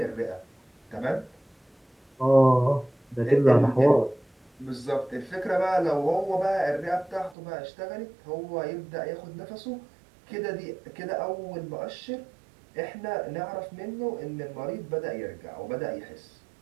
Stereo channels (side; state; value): left; drops out; at 7.4 s